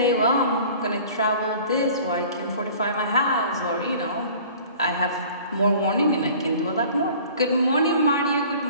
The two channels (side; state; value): both; inverted; correlation -0.47